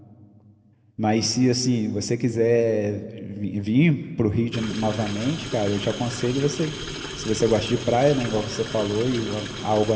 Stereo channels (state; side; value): identical; both; correlation 1.00